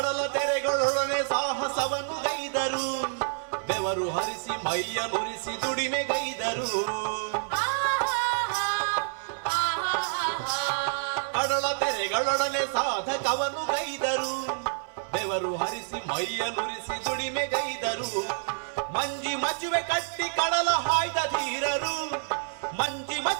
ತೆರೆಗಳೊಡನೆ ಸಾಹಸವನ್ನು ಗೈದರು ಬೆವರು ಹರಿಸಿ ಮೈಯ ನುರಿಸಿ ದುಡಿಮೆಗೈದರು ಕಡಲ ತೆರೆಗಳೊಡನೆ ಸಾಧಕವನ್ನು ಗೈದರು ಬೆವರು ಹರಿಸಿ ಮೈಯ ನುರಿಸಿ ದುಡಿಮೆಗೈದರು ಮಂಜಿ ಮಚುವೆ ಕಟ್ಟಿ ಕಡಲ ಹಾಯ್ದ ಧೀರರು ಮಂಜಿ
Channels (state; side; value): silent; left; digital silence